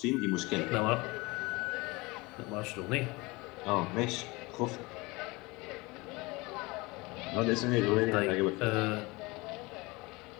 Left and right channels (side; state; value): right; quieter; 23.9 dB